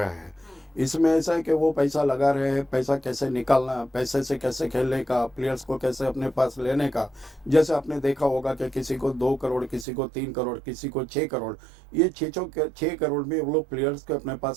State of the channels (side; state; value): left; drops out; at 9.9 s